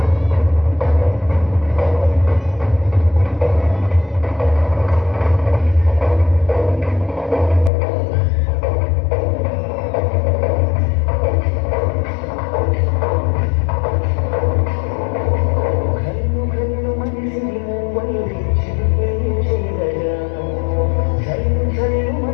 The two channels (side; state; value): right; drops out; at 7.7 s